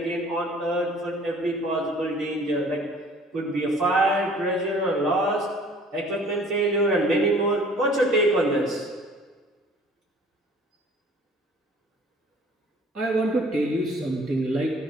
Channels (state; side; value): normal; both; correlation 0.52